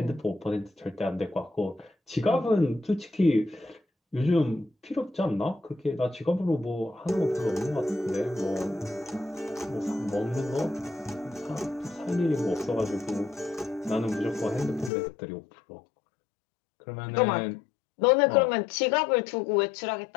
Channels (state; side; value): drops out; right; at 14.9 s